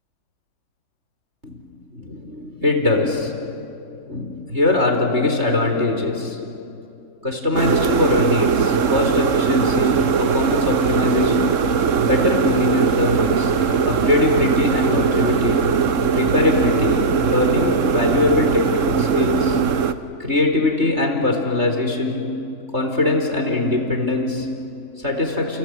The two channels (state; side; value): late; left; 3.7 ms